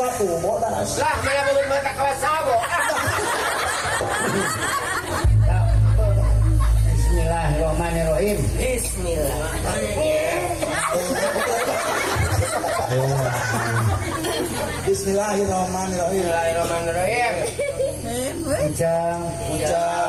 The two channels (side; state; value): both; identical; correlation 1.00